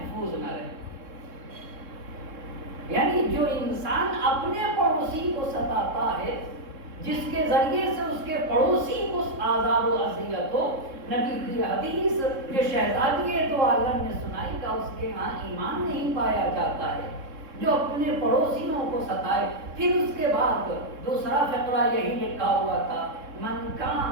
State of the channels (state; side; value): late; left; 3.7 ms